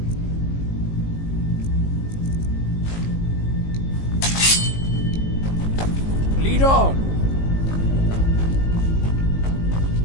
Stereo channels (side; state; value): right; late; 19 ms